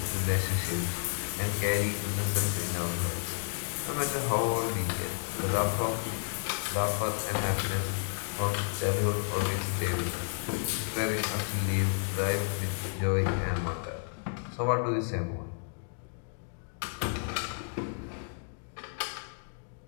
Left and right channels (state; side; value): silent; right; 57 dB below the other